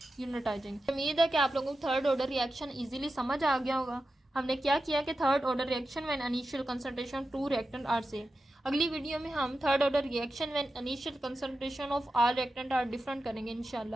यूनिट आ जाएंगे। उम्मीद है कि आप लोगों को थर्ड ऑर्डर रिएक्शन इजीली समझ आ गया होगा। हमने क्या किया कि third order reaction when initial concentration two reactant are same. अगली वीडियो में हम third order reaction when initial concentration of all reactant are different करेंगे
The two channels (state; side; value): normal; both; correlation 0.91